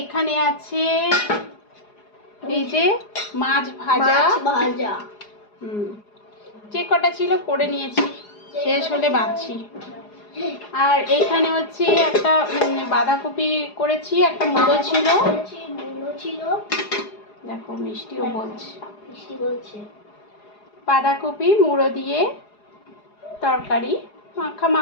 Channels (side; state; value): right; late; 4.8 ms